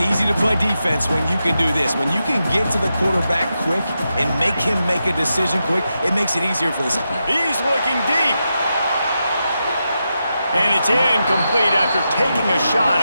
to play defense when you can do this. When you can get to the quarterback quick and make him make a decision quick, it makes it easier for the... He's looking deep. And it's incomplete after taking a shot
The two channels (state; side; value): inverted; both; correlation -0.88